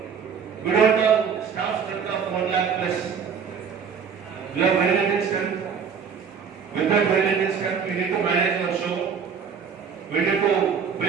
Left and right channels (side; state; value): left; quieter; 6.6 dB